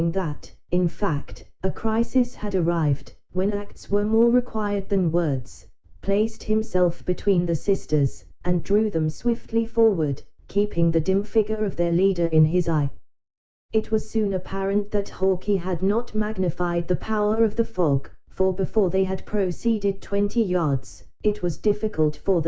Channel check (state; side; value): identical; both; correlation 1.00